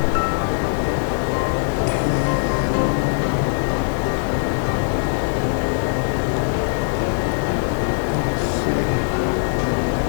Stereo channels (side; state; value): right; silent; digital silence